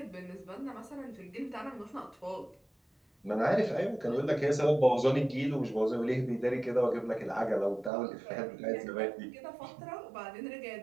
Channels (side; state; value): left; drops out; at 7.9 s